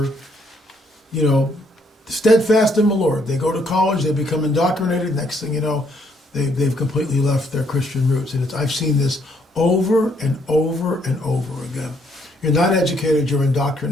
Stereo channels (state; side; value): normal; both; correlation 0.69